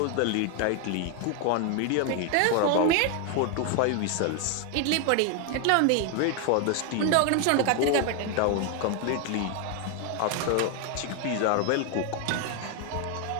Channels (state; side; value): different; both; correlation 0.01